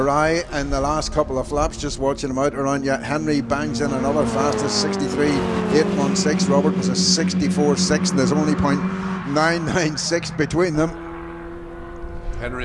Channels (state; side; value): identical; both; correlation 1.00